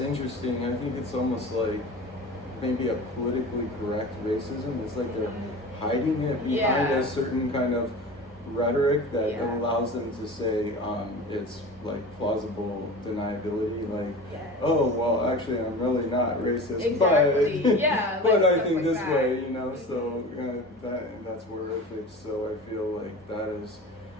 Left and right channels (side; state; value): both; normal; correlation 0.35